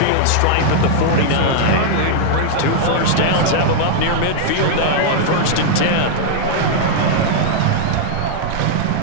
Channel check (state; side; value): different; both; correlation -0.01